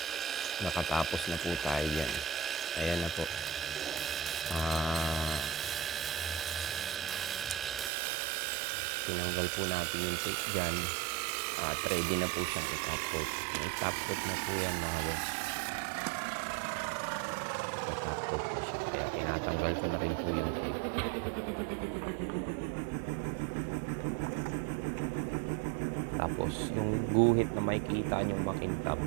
nakatapos na po tayo yan. Ayan na po. Tinanggal po natin yung tape dyan. At ready na po siyang i-top coat. I-top coat na po yan mga boss. I-top coat na siya. Kaya tinatanggal ko na rin po yung tape. Tapos yung guhit na makikita nyong makintab,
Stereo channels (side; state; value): left; drops out; at 7.9 s